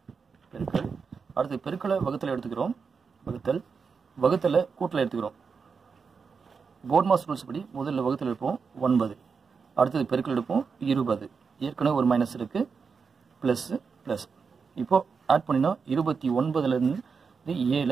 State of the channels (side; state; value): left; quieter; 5.5 dB